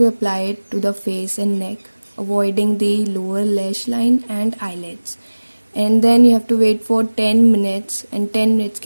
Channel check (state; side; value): inverted; both; correlation -1.00